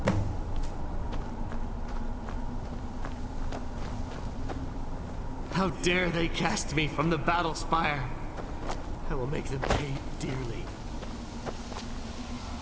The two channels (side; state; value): both; identical; correlation 1.00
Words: How dare they cast me from the battle spire? I will make them pay dearly.